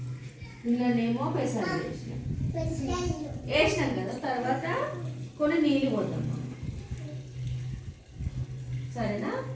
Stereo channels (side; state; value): both; identical; correlation 1.00